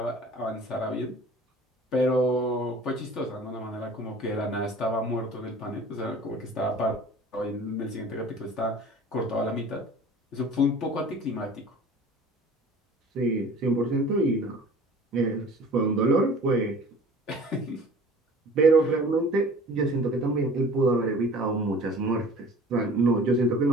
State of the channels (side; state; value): both; normal; correlation 0.45